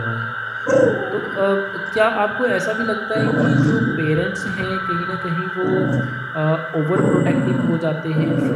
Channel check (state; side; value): identical; both; correlation 1.00